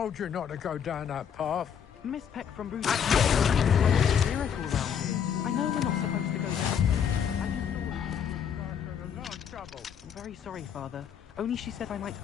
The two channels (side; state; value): right; quieter; 8.0 dB